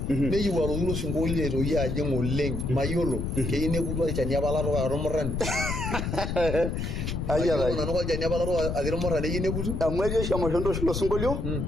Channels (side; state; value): left; noise; rumble, 2 dB below the sound